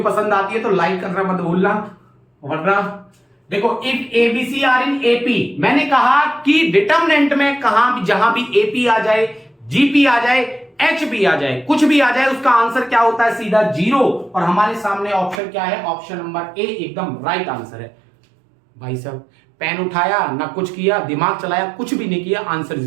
पसंद आती है तो लाइक करना मत भूलना। वरना देखो if ABC are in AP, मैंने कहा कि डिटर्मिनेंट में कहां भी जहां भी एपी आ जाए, जीपी आ जाए, एच भी आ जाए, कुछ भी आ जाए, उसका आंसर क्या होता है सीधा 0। और हमारे सामने ऑप्शन क्या है, ऑप्शन नंबर ए एकदम राइट आंसर है। भाई साहब पेन उठाया ना कुछ किया, दिमाग चलाया, कुछ भी नहीं किया, आंसर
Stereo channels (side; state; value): left; drops out; at 15.4 s